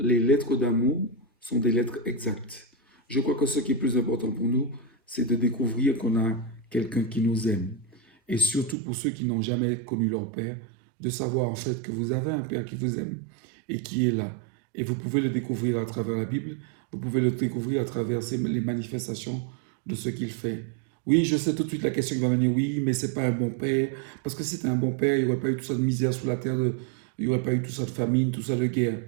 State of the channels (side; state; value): left; drops out; at 8.8 s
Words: lettres d'amour sont des lettres exactes? Je crois que ce qui est plus important pour nous, c'est de découvrir qu'on a quelqu'un qui nous aime. Et surtout pour ceux qui n'ont jamais connu leur père, de savoir en fait que vous avez un père qui vous aime et qui est là. Et vous pouvez le découvrir à travers la Bible, vous pouvez le découvrir à travers les manifestations de ce qu'il fait. Oui, je sais tout de suite la question qui va venir, oui, mais c'est pas un bon père. Parce que si c'était un bon père, il n'y aurait pas eu tout ça de misère sous la terre, il n'y aurait pas eu tout ça de famine, tout ça de guerre.